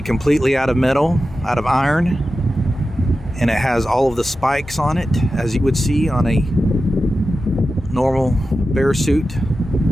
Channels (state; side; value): normal; both; correlation 0.92